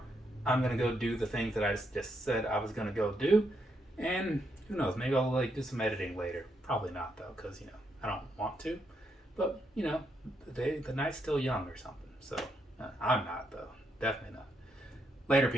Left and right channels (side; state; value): both; normal; correlation 0.78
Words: I'm going to go do the things that I just said I was going to go do. And who knows, maybe I'll do some editing later. Probably not, though, because, I don't want to. But, the night's still young or something. So, I'm not, though. Definitely not. Later,